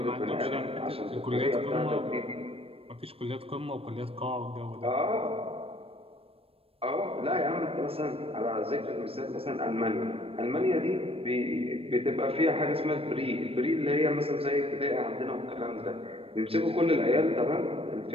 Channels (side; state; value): left; late; 0.28 ms